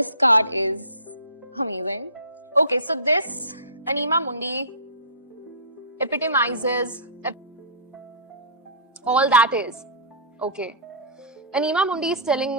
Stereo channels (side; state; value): both; inverted; correlation -0.33